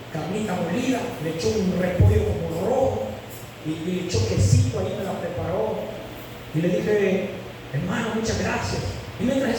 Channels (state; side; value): identical; both; correlation 1.00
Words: carnita molida, le echó un repollo como rojo, y le echó quesito, ahí me la preparó. Y le dije: hermano, muchas gracias. Y mientras